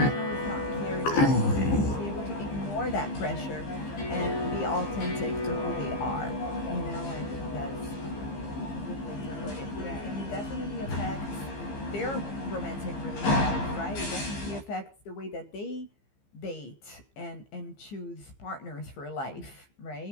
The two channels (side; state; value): right; late; 15 ms